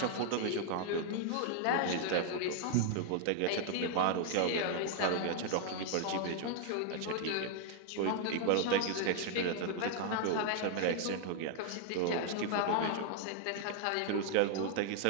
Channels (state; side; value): different; both; correlation 0.00